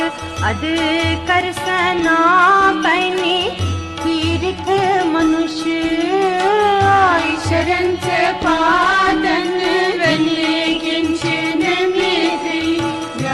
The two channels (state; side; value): identical; both; correlation 1.00